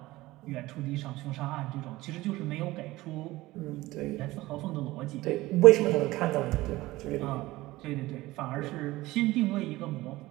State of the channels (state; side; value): quieter; left; 18.5 dB